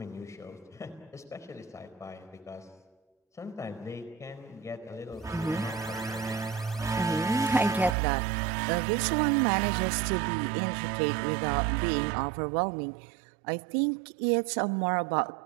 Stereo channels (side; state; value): left; drops out; at 8.0 s